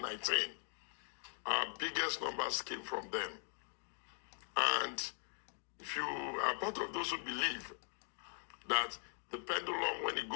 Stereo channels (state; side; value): silent; right; 50 dB below the other